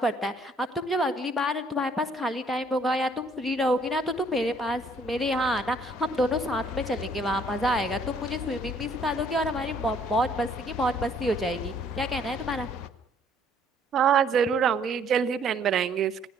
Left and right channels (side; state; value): both; normal; correlation 0.62